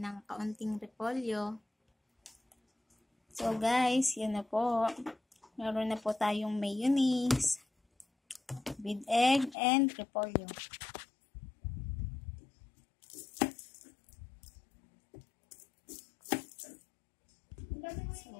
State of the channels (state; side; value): drops out; right; at 9.6 s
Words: ng kaunting repolyo. So, guys, yun na po. Meron na po tayong mayonnaise with egg and repolyo. So,